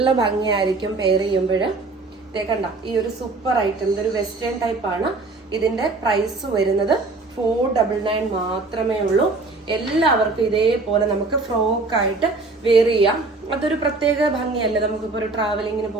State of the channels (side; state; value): left; quieter; 3.6 dB